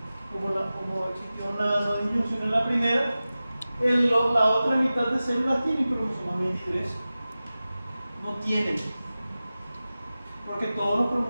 Como existió una disyunción en la primera, la otra mitad de células tienen cromosomas 23. No tienen. Porque todos los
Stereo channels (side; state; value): both; inverted; correlation -0.96